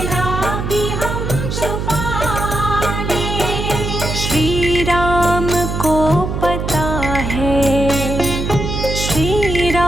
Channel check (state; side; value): noise; right; hum, 3 dB below the sound